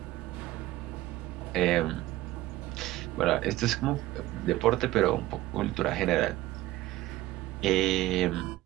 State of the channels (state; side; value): quieter; left; 16.4 dB